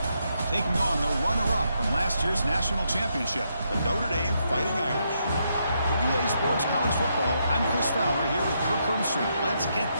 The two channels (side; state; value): both; inverted; correlation -0.79